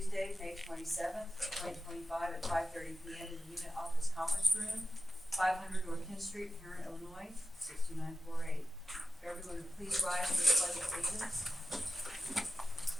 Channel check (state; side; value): normal; both; correlation 0.92